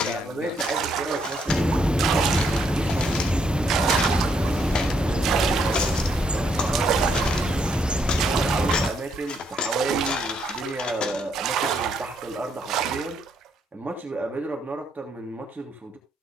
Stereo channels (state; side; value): normal; both; correlation 0.74